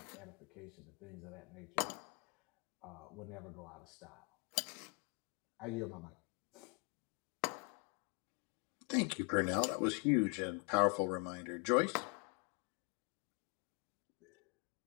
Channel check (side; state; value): right; quieter; 32.4 dB